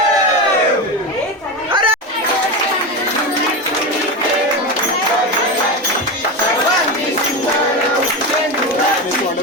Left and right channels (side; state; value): both; normal; correlation 0.19